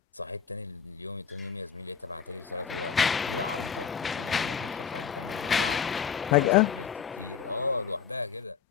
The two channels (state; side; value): quieter; right; 7.2 dB